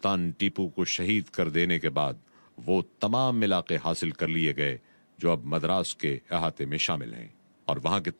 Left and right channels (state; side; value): inverted; both; correlation -1.00